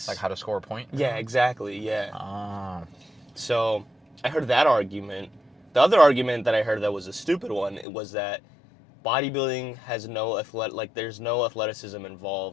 Like how to score a point? Yeah, exactly. Yeah. So I heard that argument. The other argument that I heard that was a stupid one was that bodybuilding has there's no athleticism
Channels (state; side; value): drops out; right; at 7.9 s